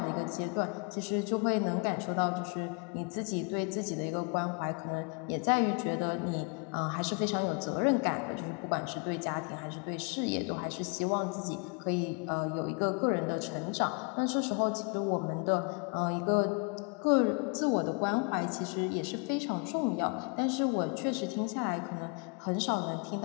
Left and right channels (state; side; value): quieter; right; 34.4 dB